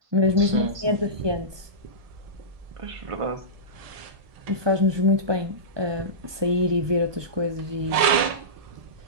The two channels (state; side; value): late; left; 1.7 ms